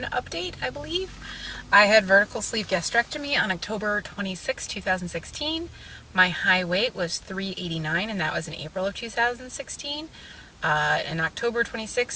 update, I believe. I had vertical sleeve gastrectomy on October 26, 2016. My high weight was 389, and that was in April of 2016. In October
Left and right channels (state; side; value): identical; both; correlation 1.00